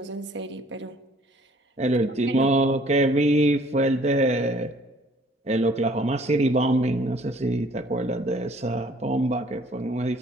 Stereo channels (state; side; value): normal; both; correlation 0.57